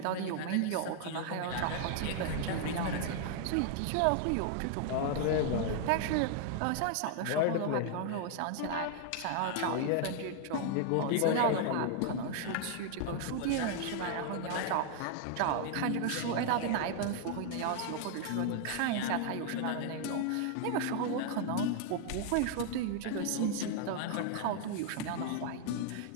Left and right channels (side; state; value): both; different; correlation 0.00